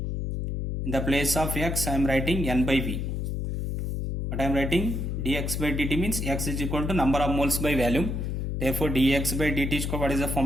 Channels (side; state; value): left; noise; hum, 2 dB below the sound